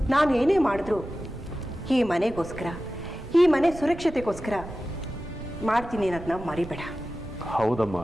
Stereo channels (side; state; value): right; noise; rumble, 13 dB below the sound